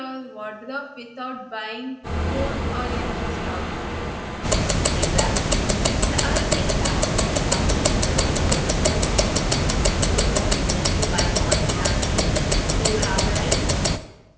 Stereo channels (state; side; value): identical; both; correlation 1.00